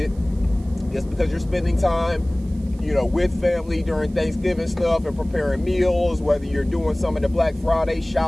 just because you're spending time, you know, with family during Thanksgiving stuff and preparing meals, whether you're doing some of the Black Friday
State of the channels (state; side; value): noise; right; hiss, 28 dB below the sound